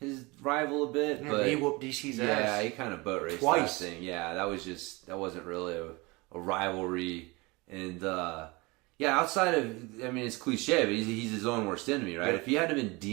rival a bit, but he whooped DC's ass. Yeah, he kind of boat raced twice. That thing. Yeah, that wasn't really a rivalry. And outside of, I mean, it's cliche, but he's his own worst enemy, right? Yeah. If he hadn't been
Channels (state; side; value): quieter; left; 25.0 dB